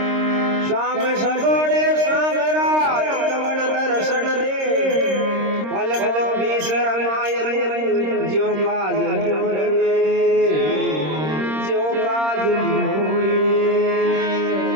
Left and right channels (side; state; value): left; late; 26 ms